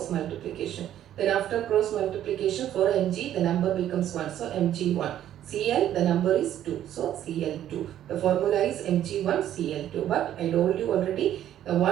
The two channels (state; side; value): quieter; left; 11.5 dB